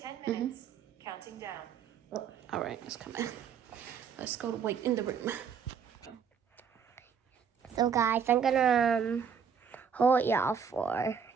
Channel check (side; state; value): left; quieter; 7.1 dB